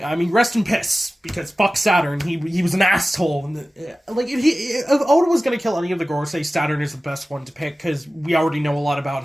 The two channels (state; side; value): normal; both; correlation 0.96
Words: mean, rest in piss, because fuck Saturn, he was an asshole. And, like, if Oda was going to kill any of the Gorosei, Saturn is the best one to pick, because we already know a lot about